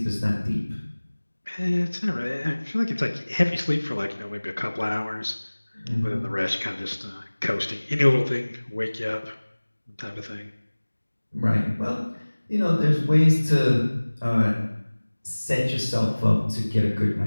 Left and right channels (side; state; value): both; inverted; correlation -1.00